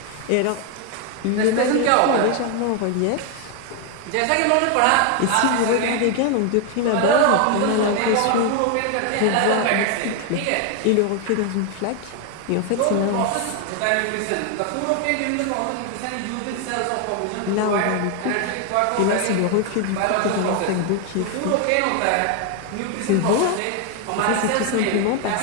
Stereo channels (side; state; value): both; different; correlation 0.01